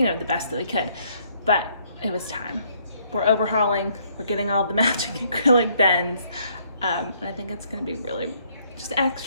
know, the best that we could. But it was time. We're overhauling, we're getting all the matching acrylic bins, and I think it's gonna be really just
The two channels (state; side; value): inverted; both; correlation -0.67